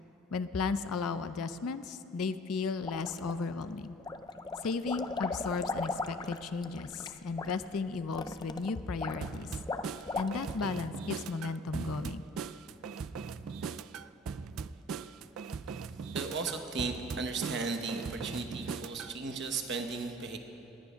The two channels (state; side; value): normal; both; correlation 0.49